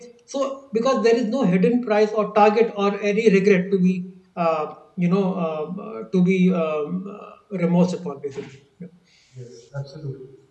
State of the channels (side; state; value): both; identical; correlation 1.00